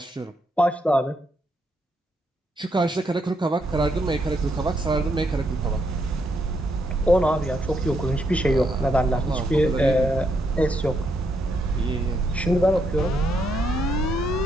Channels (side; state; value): both; normal; correlation 0.77